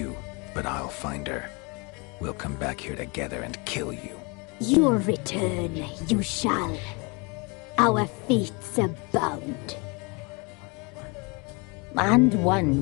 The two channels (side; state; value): right; quieter; 30.3 dB